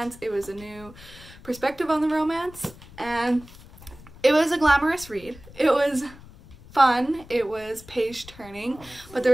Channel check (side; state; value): left; noise; rumble, 20 dB below the sound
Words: It was a new perspective on the romance and it was a glamorous read. It was fun, it was page turning, but there